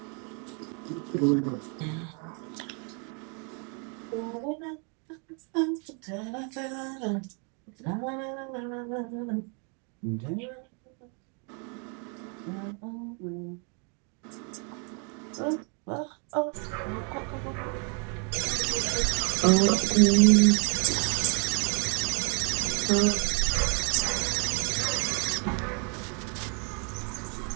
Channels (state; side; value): quieter; left; 37.7 dB